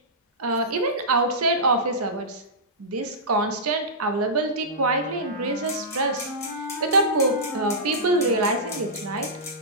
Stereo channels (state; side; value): normal; both; correlation -0.15